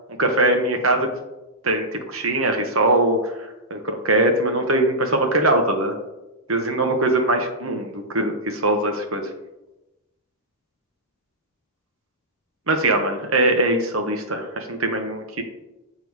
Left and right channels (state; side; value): normal; both; correlation -0.13